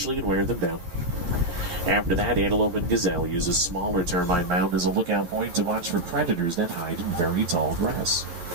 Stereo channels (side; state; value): left; late; 12 ms